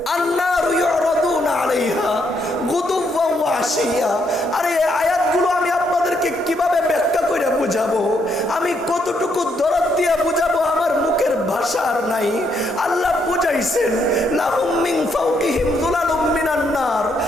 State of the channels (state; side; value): normal; both; correlation 0.75